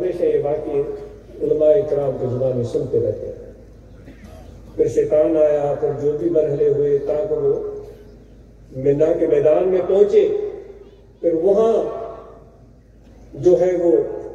یہ واقعے علماء کرام کی زبان میں سنتے رہتے ہیں. پھر شیطان آیا, پھر جو بھی مرحلے ہوئے تاکہ وہ منا کے میدان میں پہنچے. پھر وہاں جو ہے وہ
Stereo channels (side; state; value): both; identical; correlation 1.00